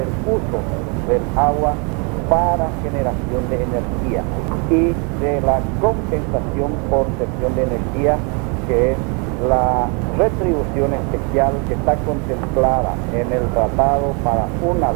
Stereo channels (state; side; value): quieter; left; 34.4 dB